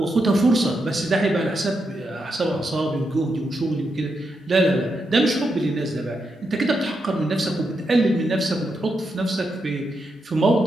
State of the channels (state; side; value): normal; both; correlation 0.84